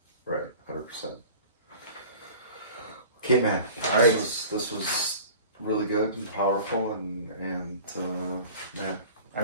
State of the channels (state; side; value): inverted; both; correlation -0.42